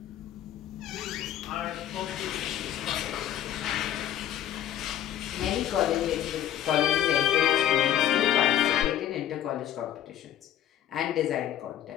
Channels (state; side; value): quieter; right; 11.4 dB